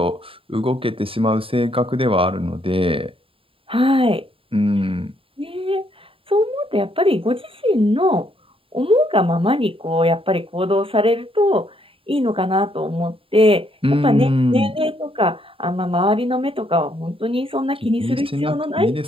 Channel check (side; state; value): left; late; 0.27 ms